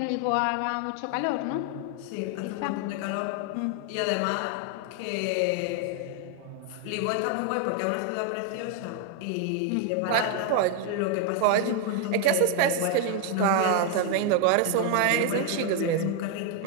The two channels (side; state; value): both; different; correlation 0.00